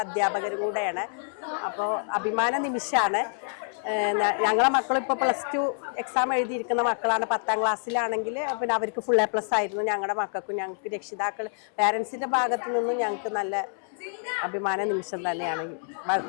അധ്യാപകരും കൂടെയാണ്. അപ്പോൾ അഭിമാന നിമിഷമാണ്. ഞങ്ങളെ മക്കളിപ്പോൾ +2 എക്സാം എഴുതിയിരിക്കുന്ന മക്കളാണ്. 10ാം ക്ലാസ്സിലാണെങ്കിൽ പിന്നെ അവർക്ക് ഫുൾ A+ ആയിരുന്നു. ഞങ്ങളുടെ മക്കൾക്കും ഞങ്ങൾക്ക് രക്ഷിതാക്കൾ പാരൻസിൻ്റെ ഭാഗത്തു നിന്നും ഞങ്ങൾക്ക് നല്ല അഭിമാന നിമിഷം തന്നെയാണ്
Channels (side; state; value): right; silent; 60 dB below the other